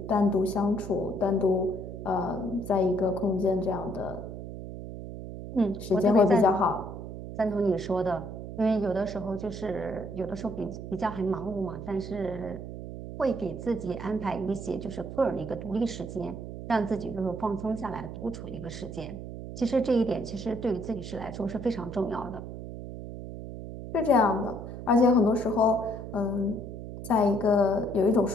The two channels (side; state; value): right; noise; hum, 9 dB below the sound